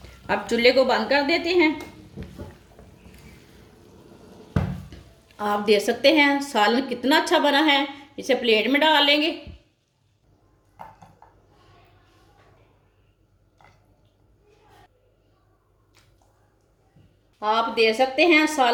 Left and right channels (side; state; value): both; identical; correlation 1.00